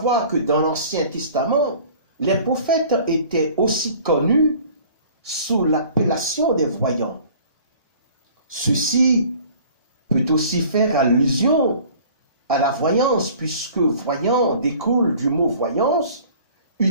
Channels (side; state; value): both; inverted; correlation -0.49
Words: que dans l'Ancien Testament, les prophètes étaient aussi connus sous l'appellation des voyants. Ceci peut aussi faire allusion à la voyance, puisque voyant découle du mot voyance,